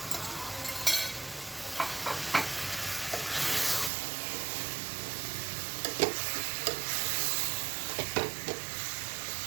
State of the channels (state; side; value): drops out; left; at 3.9 s